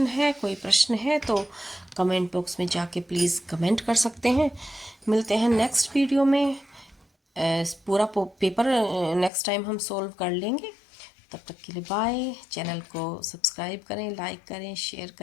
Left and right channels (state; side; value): drops out; right; at 9.3 s